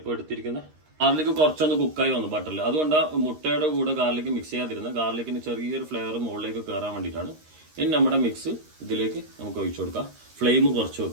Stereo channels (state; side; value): late; left; 13 ms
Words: എടുത്തിരിക്കുന്ന ഗാർലിക് കുറച്ചൊന്ന് കുക്കായി വന്നു ബട്ടറിൽ. അതുകൊണ്ടാണ് മുട്ടയുടെ കൂടെ ഗാർലിക് മിക്സ് ചെയ്യാതിരുന്നത്. ഗാർലിക്കിന് ചെറിയൊരു ഫ്ലേവർ മുകളിലേക്ക് കയറാൻ വേണ്ടിയിട്ടാണ്. ഇനി നമ്മുടെ മിക്സ് ഇതിലേക്ക് നമുക്ക് ഒഴിച്ചു കൊടുക്കാം. ഫ്ലെയിം കുറച്ച്